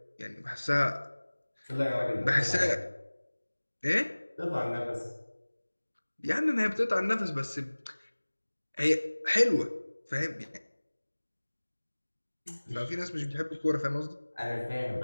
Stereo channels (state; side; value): inverted; both; correlation -1.00